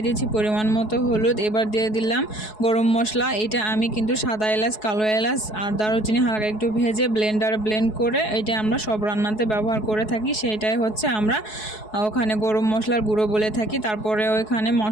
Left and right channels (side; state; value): right; late; 4.7 ms